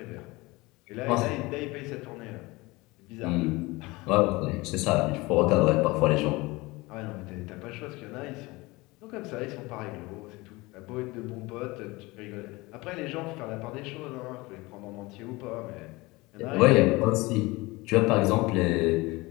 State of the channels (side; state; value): right; quieter; 22.5 dB